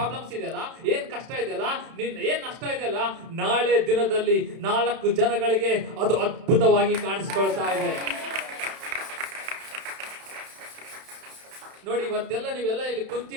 ಇದೆಯಲ್ಲ, ಏನ್ ಕಷ್ಟ ಇದೆಯಲ್ಲ, ಏನ್ ನಷ್ಟ ಇದೆಯಲ್ಲ, ನಾಳೆ ದಿನದಲ್ಲಿ 4 ಜನಗಳಿಗೆ ಅದು ಅದ್ಭುತವಾಗಿ ಕಾಣಿಸ್ಕೊಳ್ತಾ ಇದೆ. ನೋಡಿ, ಇವತ್ತೆಲ್ಲ ನೀವೆಲ್ಲ ಇಲ್ಲಿ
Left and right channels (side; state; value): left; late; 31 ms